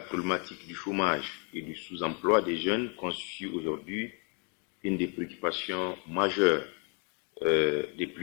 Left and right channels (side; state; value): right; quieter; 36.6 dB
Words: problématique du chômage et du sous-emploi des jeunes constitue aujourd'hui une des préoccupations majeures des